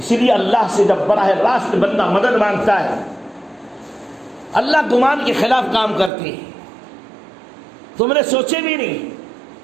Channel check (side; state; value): left; drops out; at 6.1 s